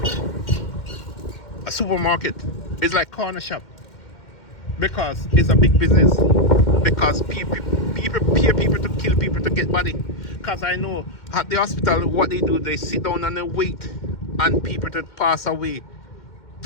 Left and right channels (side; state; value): right; late; 2.1 ms